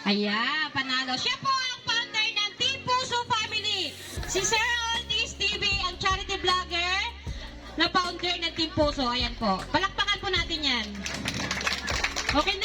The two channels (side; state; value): both; identical; correlation 1.00